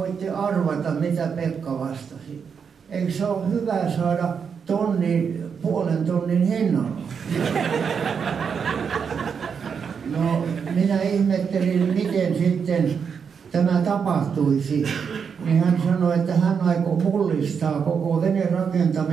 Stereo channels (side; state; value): left; quieter; 6.5 dB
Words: arvata, mitä Pekka vastasi. Eikö se ole hyvä saada puolen tonnin hinnalla. No, minä ihmettelin, miten sitten tämä tapahtuisi. Niin hän sanoi, että hän aikoo mullistaa koko